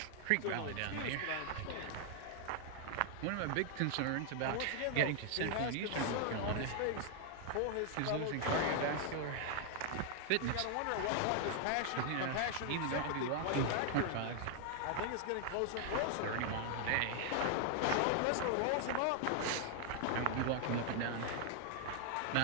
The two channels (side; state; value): both; different; correlation 0.00